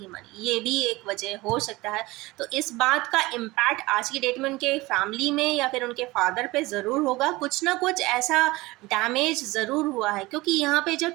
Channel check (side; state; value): left; quieter; 20.8 dB